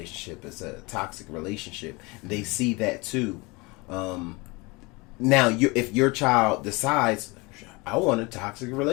it's a toxic relationship, they see that too. Now, if your child decides, I want a toxic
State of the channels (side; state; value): right; quieter; 26.0 dB